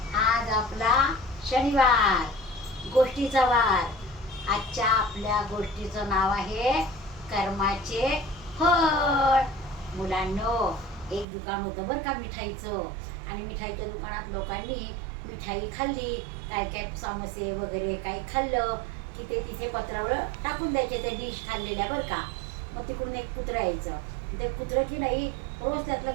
आज आपला शनिवार, गोष्टीचा वार. आजच्या आपल्या गोष्टीचं नाव आहे कर्माचे फळ. मुलांनो, एक दुकान होतं बरं का मिठाईचं, आणि मिठाईच्या दुकानात लोकांनी मिठाई खाल्ली, काय काय समोसे वगैरे काही खाल्लं की ते तिथे पत्रावळ टाकून द्यायचे, ते डिश खाल्लेल्या बरं का. मग तिकडून एक कुत्रं यायचं. ते कुत्रं की नाही रोज त्यातलं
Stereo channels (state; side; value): drops out; left; at 11.2 s